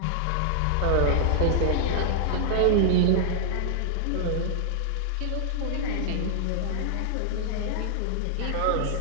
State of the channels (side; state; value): both; different; correlation -0.01